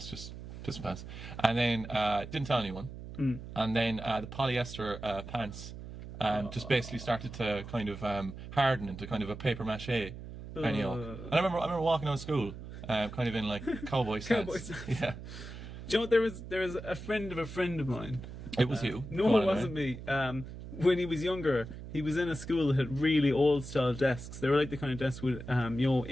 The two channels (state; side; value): noise; right; hum, 11 dB below the sound